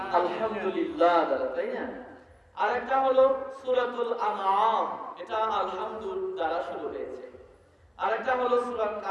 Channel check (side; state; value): both; identical; correlation 1.00